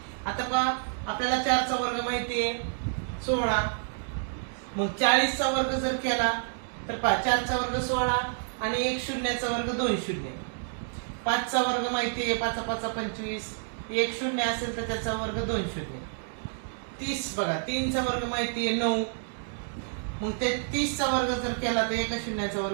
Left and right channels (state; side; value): silent; left; digital silence